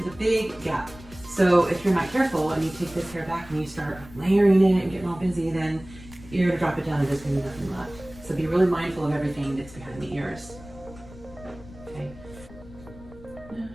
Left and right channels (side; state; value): left; noise; rumble, 18 dB below the sound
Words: a big gap. So if you're not careful and you take this hair back and you start layering it and getting all busy, then you're gonna drop it down and there's gonna be nothing left. So be really mindful of everything that's behind the ears. Okay. I